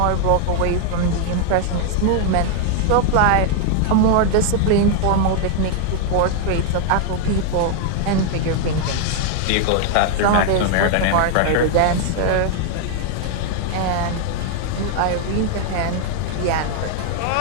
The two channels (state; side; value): different; both; correlation 0.00